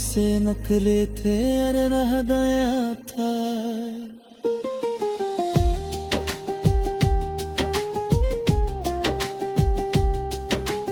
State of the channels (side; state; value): both; identical; correlation 1.00